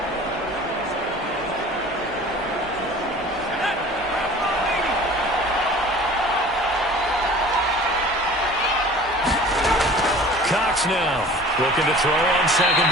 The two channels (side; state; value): both; normal; correlation 0.44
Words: Cox now looking to throw on 2nd